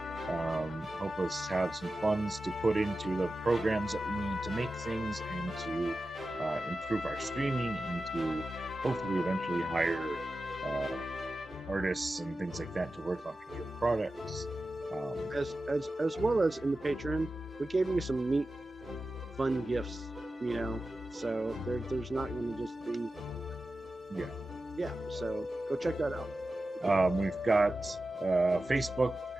us have some funds to put into the programs that we need to make things and to improve our streaming and to hopefully eventually hire artists and things like that to work on future products. As well as in the Patreon, we gave you some neat, fun gifts, so there's not going to just be so go check that out. We've got a Facebook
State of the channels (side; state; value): both; normal; correlation 0.93